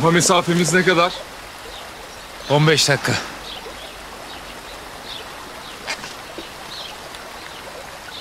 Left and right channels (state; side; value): identical; both; correlation 1.00